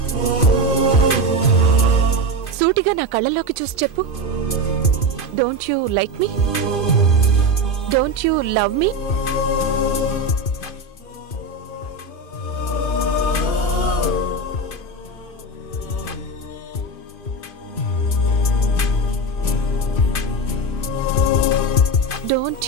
సూటిగా నా కళ్ళల్లోకి చూసి చెప్పు. Don't you like me? Don't you love me? Don't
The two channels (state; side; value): late; right; 2.5 ms